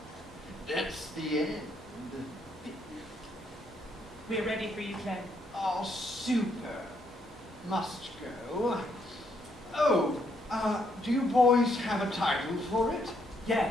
That's the end. We're ready for you, Clem. Oh, super. Must go. Oh, do you boys have a title for it? Yeah,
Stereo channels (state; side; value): normal; both; correlation 0.73